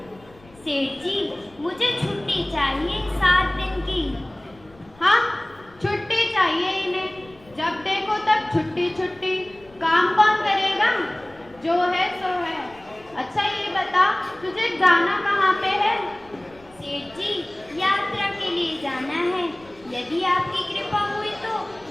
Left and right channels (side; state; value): left; noise; rumble, 26 dB below the sound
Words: सेठ जी, मुझे छुट्टी चाहिए 7 दिन की। हाँ, छुट्टी चाहिए इन्हें। जब देखो तब छुट्टी छुट्टी। काम कौन करेगा? जो है सो है। अच्छा ये बता, तुझे जाना कहाँ पे है? सेठ जी, यात्रा के लिए जाना है। यदि आपकी कृपा हुई तो